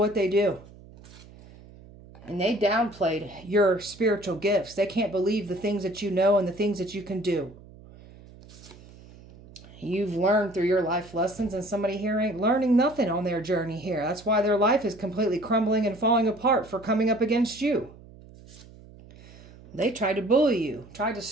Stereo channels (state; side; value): noise; right; hum, 21 dB below the sound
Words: they do. And they downplayed your spiritual gifts. They can't believe the things that you know and the things that you can do. You've learned through your life lessons, and somebody here ain't learning nothing on their journey here. That's why their life is completely crumbling and falling apart for coming up against you. They tried to bully you, tried to